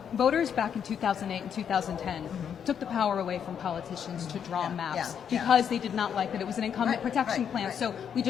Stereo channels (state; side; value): quieter; right; 8.0 dB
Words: voters back in 2008 and 2010 took the power away from politicians to draw maps because they did not like that it was an incumbent protection plan. So we